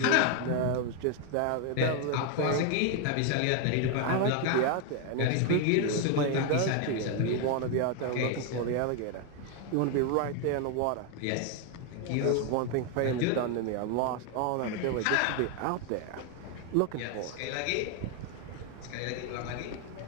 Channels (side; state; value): both; different; correlation 0.01